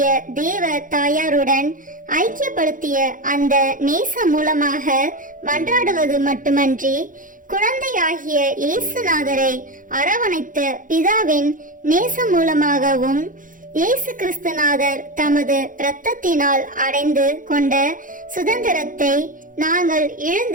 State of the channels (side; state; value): left; late; 0.39 ms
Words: தேவ தாயாருடன் ஐக்கியப்படுத்திய அந்த நேசம் மூலமாக மன்றாடுவது மட்டுமன்றி, குழந்தையாகிய இயேசுநாதரை அரவணைத்த பிதாவின் நேசம் மூலமாகவும் இயேசு கிறிஸ்துநாதர் தமது இரத்தத்தினால் அடைந்து கொண்ட சுதந்திரத்தை நாங்கள்